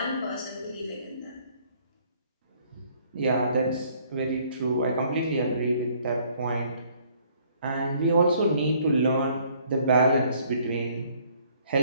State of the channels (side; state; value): both; inverted; correlation -0.62